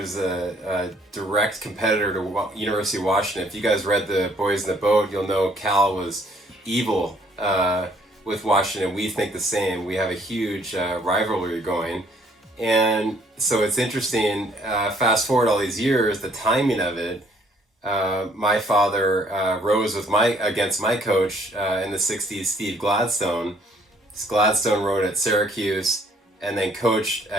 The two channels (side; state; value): both; normal; correlation 0.63